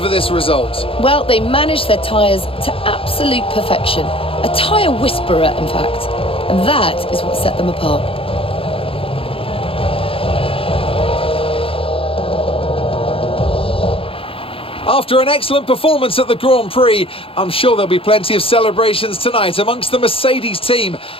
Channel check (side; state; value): right; late; 0.27 ms